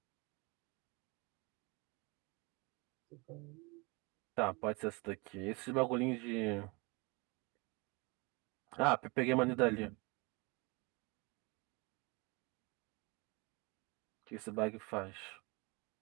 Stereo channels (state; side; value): quieter; left; 28.2 dB